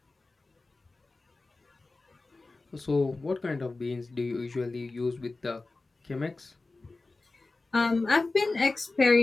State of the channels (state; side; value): quieter; right; 3.4 dB